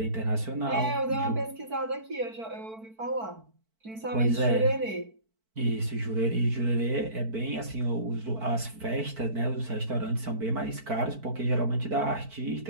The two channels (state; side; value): late; left; 4.5 ms